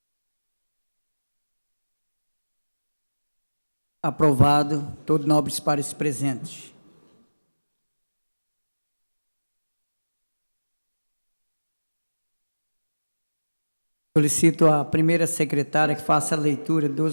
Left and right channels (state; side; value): inverted; both; correlation -1.00